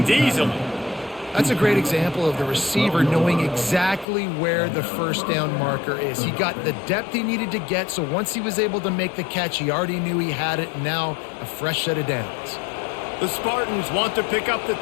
easily. That's a great example of the receiver knowing exactly where the first down marker is. He got the depth he needed to get, so once he was able to make the catch, he already knew he had it, and now a fresh set of downs. The Spartans want to pick up the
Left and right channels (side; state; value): right; drops out; at 4.0 s